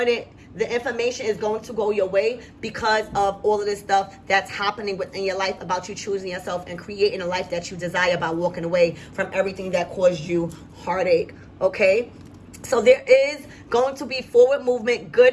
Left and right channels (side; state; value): both; identical; correlation 1.00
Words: The information is going to go your way because of all of this stuff that's happening within your life about you choosing yourself and creating a life that you desire by walking away from everything that caused you heartache. Okay? So there is going to be forward movement,